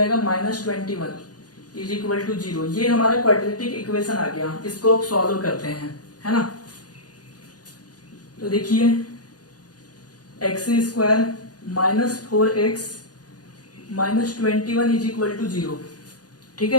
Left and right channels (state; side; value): late; right; 0.69 ms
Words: माइनस 21 इज इक्वल टू 0। ये हमारा क्वाड्रेटिक इक्वेशन आ गया, इसको अब सॉल्व करते हैं, है ना। तो देखिए x square minus 4x minus 21 is equal to 0। ठीक